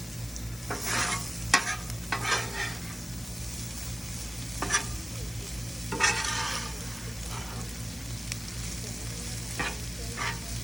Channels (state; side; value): noise; left; hiss, 13 dB below the sound